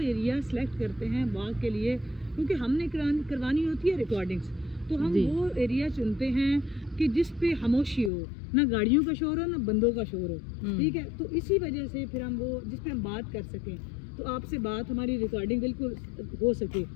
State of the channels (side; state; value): right; drops out; at 8.1 s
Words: एरिया सिलेक्ट करते हैं वॉक के लिए, क्योंकि हमने करवानी होती है रिकॉर्डिंग्स, तो हम वो एरिया चुनते हैं कि जिस पे खामोशी हो, ना गाड़ियों का शोर हो ना बंदों का शोर हो, ठीक है। तो इसी वजह से फिर हम वो जिस पे हम बात कर सकें, तो आपसे बात हमारी रिकॉर्डिंग बिल्कुल हो सके,